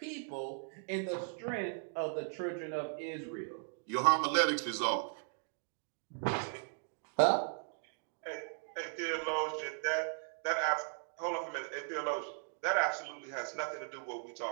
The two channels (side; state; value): left; silent; 53 dB below the other